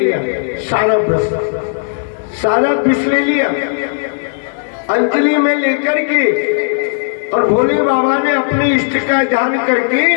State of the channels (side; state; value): right; silent; digital silence